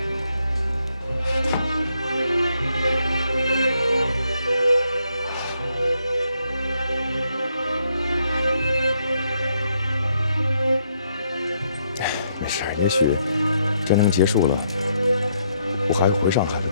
没事，也许战争结束了，我还会回上海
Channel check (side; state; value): both; inverted; correlation -0.75